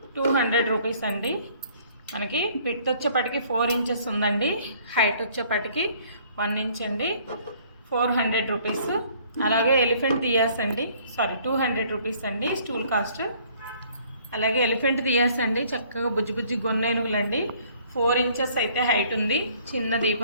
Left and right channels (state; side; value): inverted; both; correlation -0.58